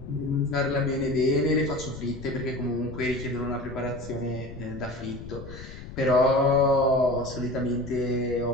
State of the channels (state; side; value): noise; left; rumble, 13 dB below the sound